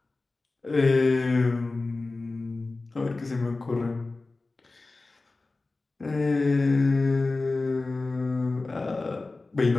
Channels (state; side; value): quieter; right; 3.4 dB